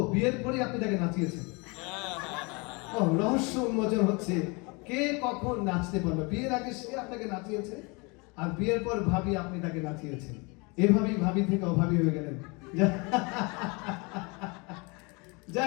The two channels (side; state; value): right; quieter; 28.9 dB